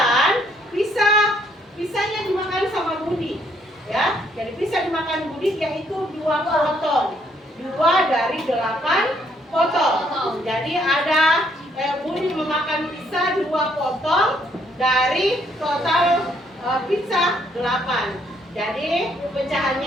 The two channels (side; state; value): both; normal; correlation 0.69